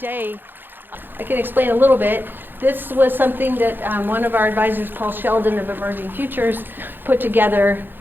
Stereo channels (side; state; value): left; late; 0.096 ms